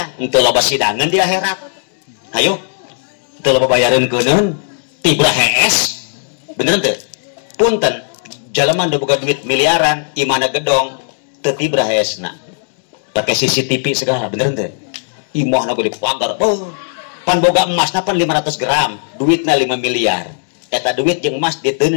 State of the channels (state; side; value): silent; right; 69 dB below the other